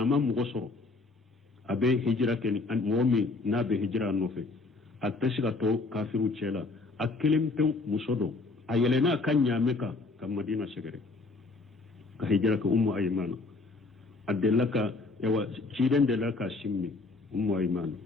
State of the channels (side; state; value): right; quieter; 3.6 dB